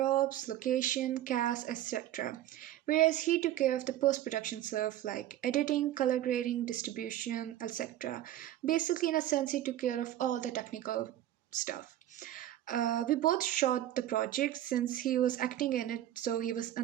location, cast, etc. Whereas he took care of the post production stuff like editing, color grading, distribution, etc. Basically, in a sense, he took care of all the technical stuff. We both shot the project since he was acting in it, so he was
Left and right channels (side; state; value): left; quieter; 12.9 dB